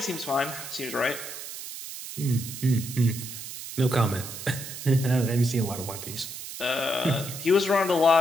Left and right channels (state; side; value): noise; right; hiss, 10 dB below the sound